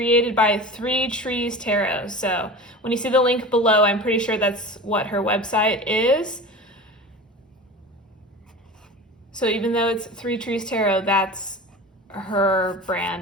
by 3 Trees Tarot. So when you see the link below, I'm pretty sure that's what her website is. So even though it's 3 Trees Tarot, that's her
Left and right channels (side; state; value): both; normal; correlation 0.33